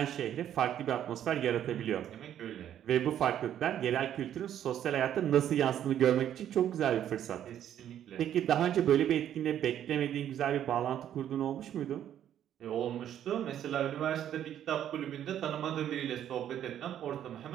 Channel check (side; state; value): left; quieter; 10.5 dB